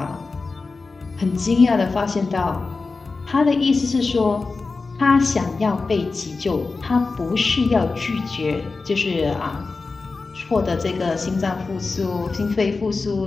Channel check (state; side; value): quieter; right; 4.0 dB